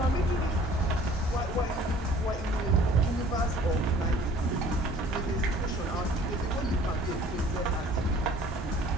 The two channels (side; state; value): both; normal; correlation 0.52